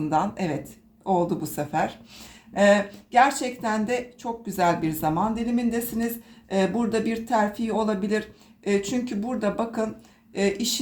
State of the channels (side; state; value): both; identical; correlation 1.00